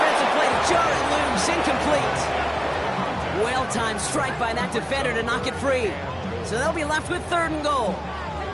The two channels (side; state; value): both; identical; correlation 1.00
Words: play to jar it loose, incomplete. Well-timed strike by that defender to knock it free. So they'll be left with 3rd and goal.